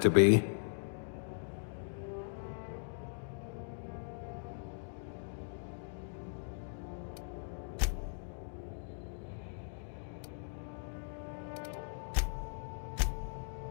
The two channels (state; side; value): silent; right; digital silence